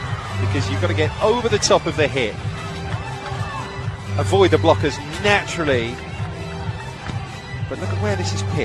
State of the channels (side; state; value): both; identical; correlation 1.00